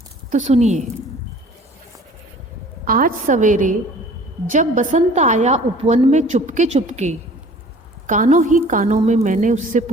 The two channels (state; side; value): normal; both; correlation 0.49